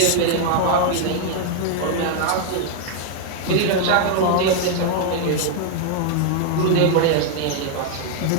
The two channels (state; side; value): different; both; correlation 0.00